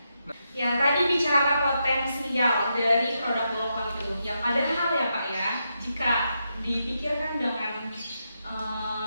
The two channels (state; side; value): inverted; both; correlation -0.84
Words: Ya, tadi bicara potensial dari produk Golok Langit itu. Yang padahal ya Pak ya, jika dipikirkan dengan